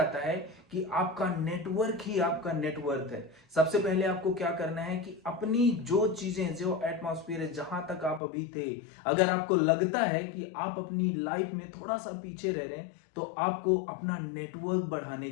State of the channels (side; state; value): right; drops out; at 8.2 s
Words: है कि आपका नेटवर्क ही आपका नेटवर्थ है। सबसे पहले आपको क्या करना है कि अपनी जो चीजें, जो एटमॉस्फेयर है, जहां तक आप अभी थे, अगर आपको लगता है कि आप अपनी लाइफ में थोड़ा सा पीछे रह रहे हैं तो आपको अपना नेटवर्क बढ़ाने